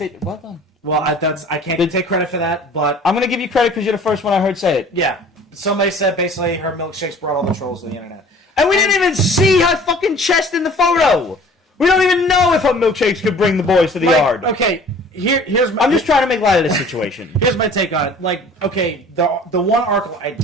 Well done. Well, I can't take credit for that, but I'm gonna give you credit because you're the first one I heard say it. yeah, somebody said basically her milkshakes brought all the trolls to the internet. And we didn't even see her fucking chest in the photo. We don't even know if her milkshakes could bring the boys to the yard. Okay, here's my. I'm just trying to make light of this situation. Here's my take on it. Like, okay, the one article I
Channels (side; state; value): both; normal; correlation 0.48